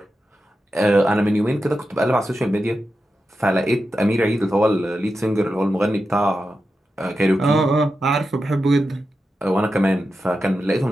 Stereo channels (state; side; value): normal; both; correlation 0.90